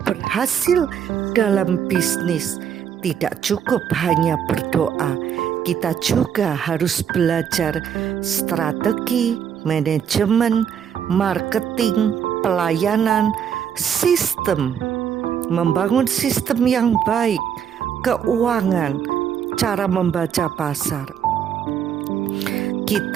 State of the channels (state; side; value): quieter; left; 8.3 dB